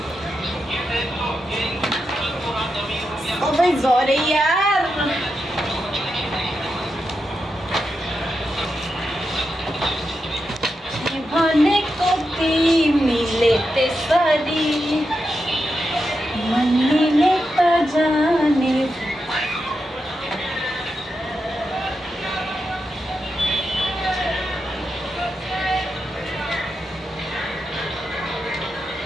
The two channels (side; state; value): both; normal; correlation 0.87